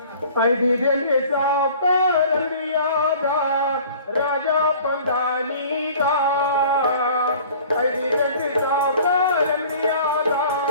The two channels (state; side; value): inverted; both; correlation -0.48